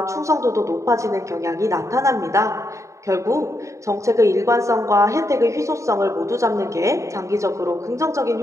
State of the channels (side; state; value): left; late; 0.15 ms